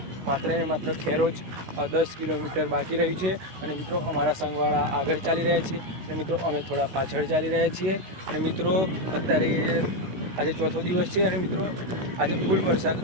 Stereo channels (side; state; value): left; late; 16 ms